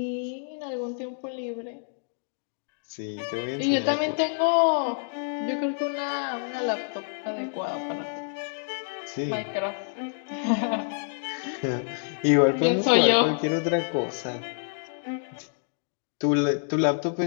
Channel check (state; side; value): silent; right; 60 dB below the other